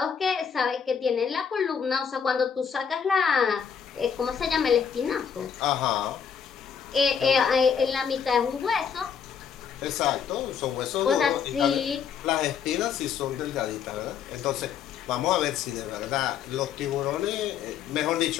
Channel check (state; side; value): quieter; right; 7.2 dB